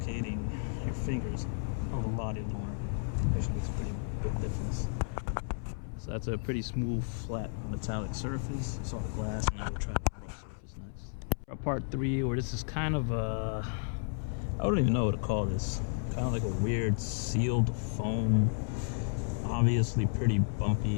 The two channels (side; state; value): right; silent; 56 dB below the other